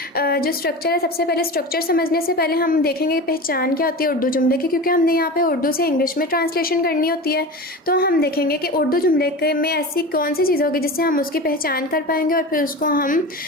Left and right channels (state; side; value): normal; both; correlation 0.29